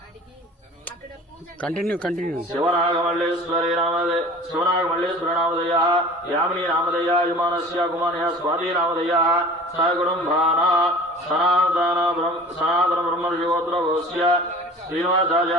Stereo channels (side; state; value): both; normal; correlation 0.42